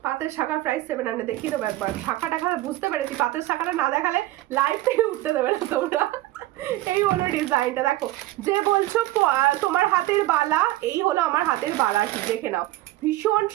পাতের শাখার প্রাইস 700। দেখিয়ে দেবো একবার, শাখা টাখা বুঝতে পেরেছি, পাতের শাখাটা না দেখালে লাইভ থেকে উঠতে দেবে না তোমরা। এই হলো ডিজাইনটা, দেখো যে বলছো তোমার হাতের বালা, এই হলো আমার হাতের বালা, কি দেখে নাও, ভীষণ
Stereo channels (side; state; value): left; quieter; 16.7 dB